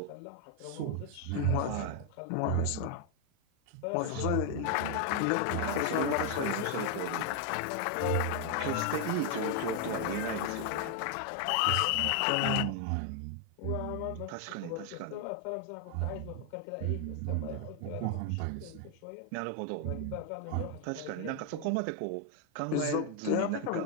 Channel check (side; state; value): both; different; correlation 0.00